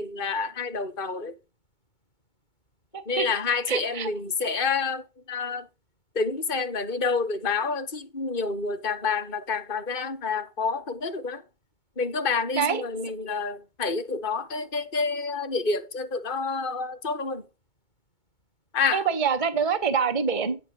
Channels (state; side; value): late; right; 2.2 ms